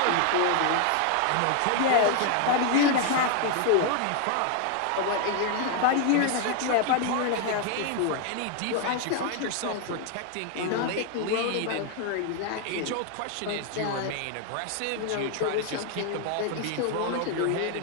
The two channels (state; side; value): different; both; correlation 0.00